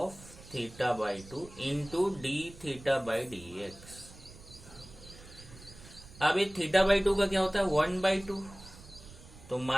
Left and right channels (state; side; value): noise; right; rumble, 19 dB below the sound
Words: theta by 2 into d theta by d x. अब ये थीटा बाई 2 का क्या होता है, 1 बाई 2, तो